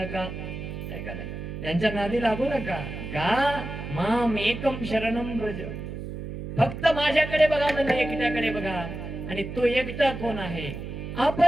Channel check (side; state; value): right; noise; hum, 8 dB below the sound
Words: यांच्या नादी लागू नका. का माम एकम शरणम ब्रज, फक्त माझ्याकडे बघा, मला एकट्याकडे बघा. आणि तो एकटा कोण आहे,